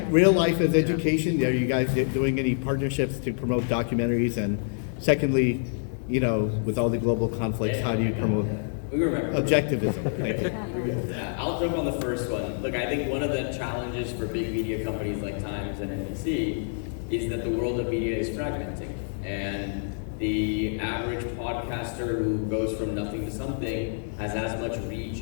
real life as education, are you guys doing any partnerships to promote documentaries? And secondly, with all the global conflicts, how do you promote objectivism? Thank you. I'll jump on the first one. Look, I think one of the challenges for big media companies like Times and NBC is that the world of media is fragmenting. And the average podcaster who goes from nothing to something has as much reach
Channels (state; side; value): silent; right; 60 dB below the other